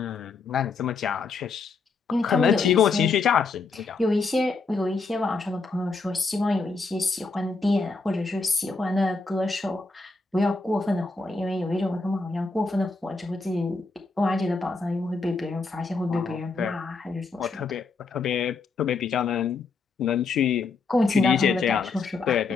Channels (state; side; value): quieter; right; 4.1 dB